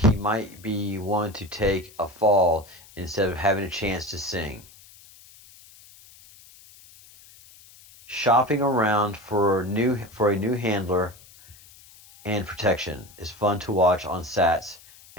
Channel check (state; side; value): noise; left; hiss, 23 dB below the sound